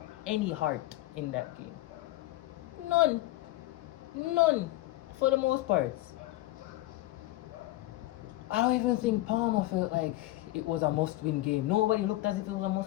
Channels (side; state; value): right; quieter; 17.2 dB